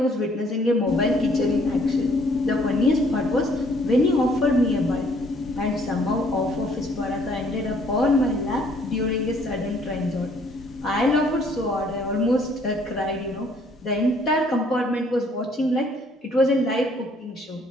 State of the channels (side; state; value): both; normal; correlation 0.63